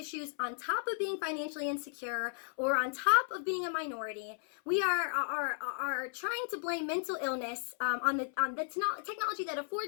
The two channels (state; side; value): silent; right; 55 dB below the other